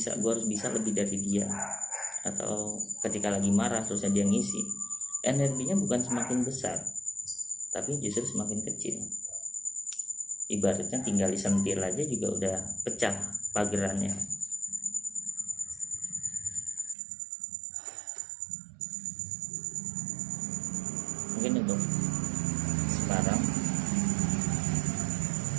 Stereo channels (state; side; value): drops out; left; at 16.9 s